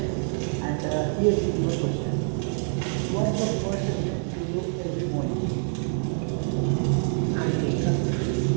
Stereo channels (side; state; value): left; silent; 61 dB below the other